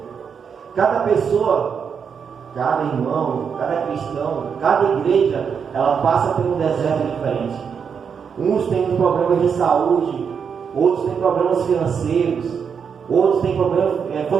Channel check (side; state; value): left; quieter; 6.7 dB